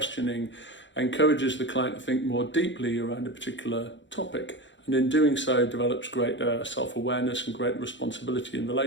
encourages the client to think more deeply around a particular topic, and in doing so develops greater self-awareness and greater responsibility in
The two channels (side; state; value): right; late; 0.54 ms